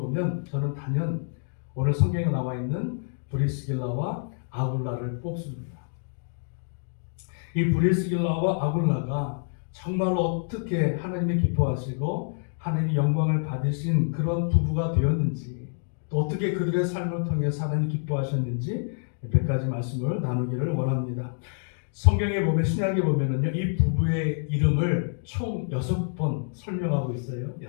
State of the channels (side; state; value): right; silent; digital silence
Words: 저는 단연 오늘 성경에 나와 있는 브리스길라와 아굴라를 뽑습니다. 이 브리스길라와 아굴라가 정말로 어떻게 하나님이 기뻐하시고 하나님이 영광을 받으신 그런 부부가 되었는지 또 어떻게 그들의 삶을 통해서 하나님이 기뻐하셨는지 몇 가지 말씀을 나누기를 원합니다. 성경에 보면 신약에 보면은요 이 부부의 이름을 총 6번 설명하고 있어요.